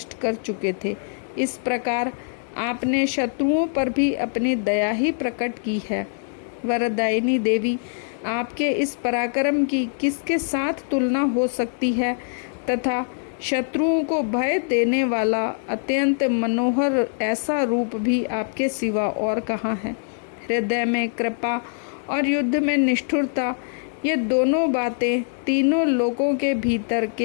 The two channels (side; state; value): right; silent; digital silence